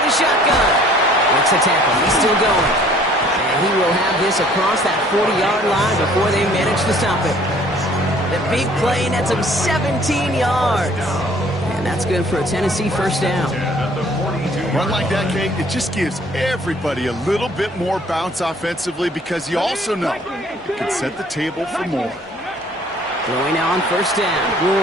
the shotgun. Makes a tackle. He's still going. And he will have this across that 40-yard line before they manage to stop it. The big play nets him 17 yards. And that's good for a Tennessee first down. Run like that, Kate, it just gives everybody a little bit more bounce offensively because you also know it can set the table for more. Throwing now on 1st down.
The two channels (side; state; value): both; normal; correlation 0.56